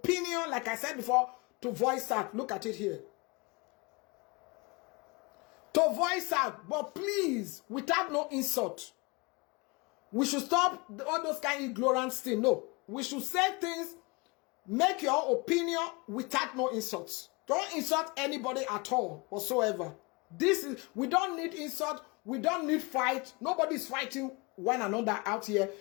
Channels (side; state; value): right; quieter; 27.4 dB